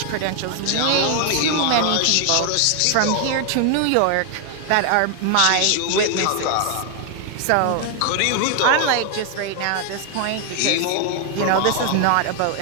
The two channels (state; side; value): different; both; correlation 0.00